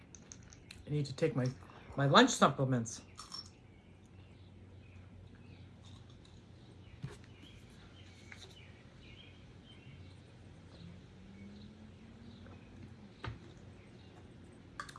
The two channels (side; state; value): both; identical; correlation 1.00